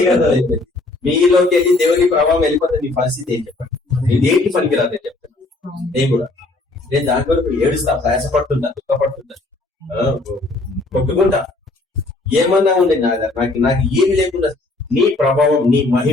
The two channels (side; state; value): right; quieter; 3.1 dB